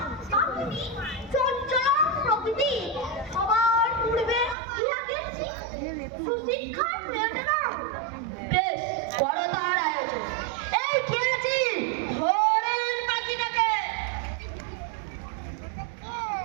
পাখিটি চঞ্চল প্রকৃতি, সবার পূর্বে ইহাকে সুশিক্ষার প্রয়োজন। বেশ, করো তার আয়োজন। এই কে আছি? ধরেন পাখিটাকে।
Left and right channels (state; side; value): drops out; left; at 4.5 s